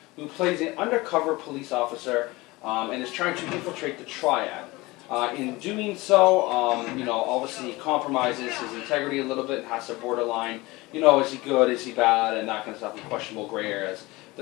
who plays an undercover police officer and is trying to infiltrate the Triad. In doing so, obviously he compromises his integrity a little bit and has to borderline, is he good, is he bad, and that kind of stuff in questionable gray areas.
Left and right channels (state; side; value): quieter; right; 21.7 dB